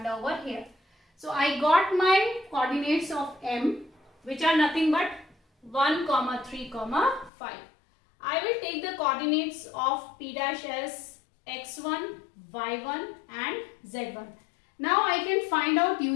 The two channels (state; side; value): drops out; right; at 7.3 s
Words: over here. So I got my coordinates of M, which are nothing but 1, 3, 5. I will take the coordinates of P dash as x1, y1 and z1. Now I can find out